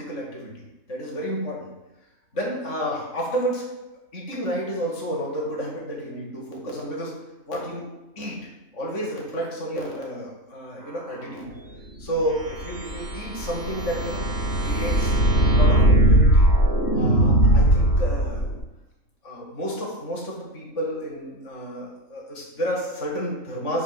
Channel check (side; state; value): right; late; 3.5 ms